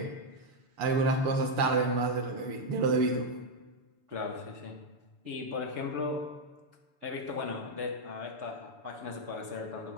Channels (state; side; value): late; left; 7.0 ms